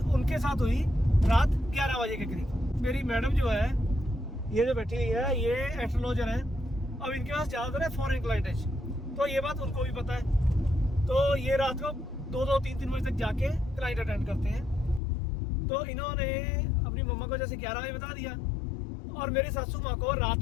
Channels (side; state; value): right; drops out; at 15.0 s